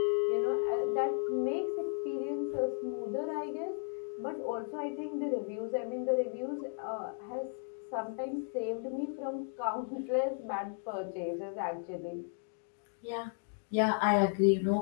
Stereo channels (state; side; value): silent; right; 55 dB below the other